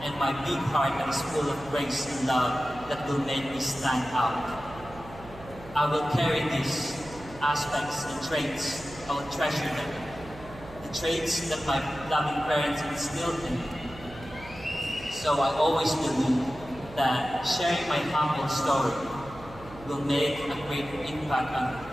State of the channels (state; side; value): noise; right; hum, 17 dB below the sound